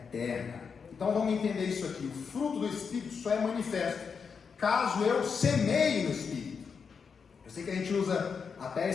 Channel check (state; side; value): quieter; right; 5.9 dB